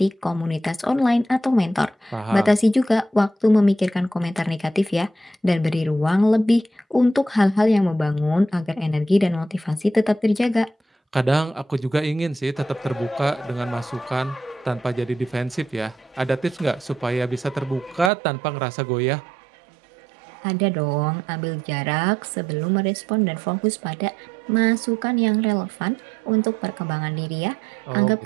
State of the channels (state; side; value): drops out; left; at 18.1 s